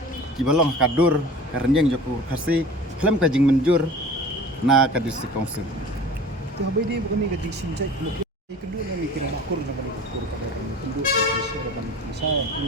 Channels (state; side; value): normal; both; correlation 0.40